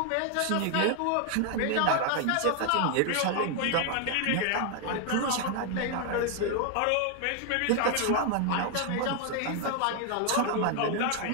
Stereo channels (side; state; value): both; different; correlation 0.00